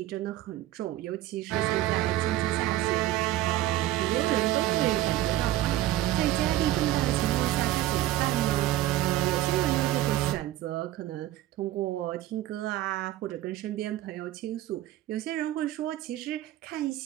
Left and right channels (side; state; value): left; quieter; 14.4 dB